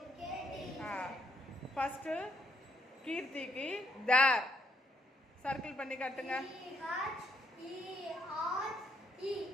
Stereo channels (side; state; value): both; normal; correlation 0.73